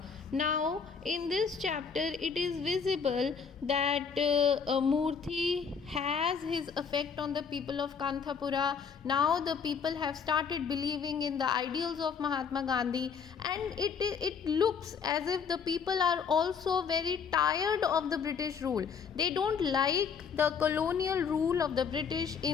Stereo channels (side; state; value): right; quieter; 6.3 dB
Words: Now in this chapter it is visible that Murthy has his effect on the people of Kanthapura. Now the people have started believing in the ideals of Mahatma Gandhi, and it looks as if the people are also very tired of the British rule. They don't like the colonial rule of the British